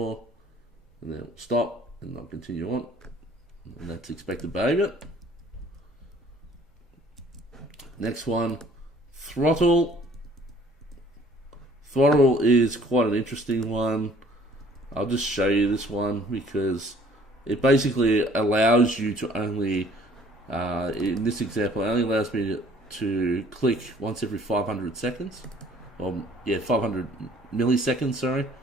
and then it'll stop, and I'll continue on. And that's expected behavior. Next one, Throttle. Throttle is quite an interesting one. I'll just show you this one because it basically allows you to only, in this example, it only allows me to click once every 500 seconds. 500 milliseconds, sorry,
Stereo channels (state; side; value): normal; both; correlation 0.56